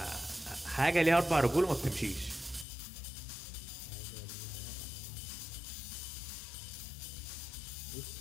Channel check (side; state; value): right; drops out; at 2.7 s